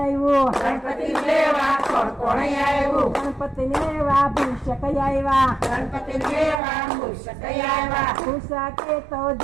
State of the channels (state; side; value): drops out; left; at 6.6 s